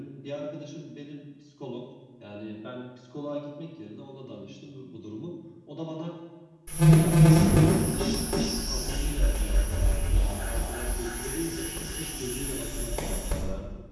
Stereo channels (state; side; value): identical; both; correlation 1.00